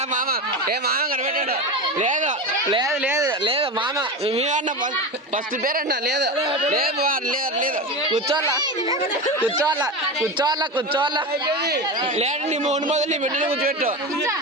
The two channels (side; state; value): both; normal; correlation 0.22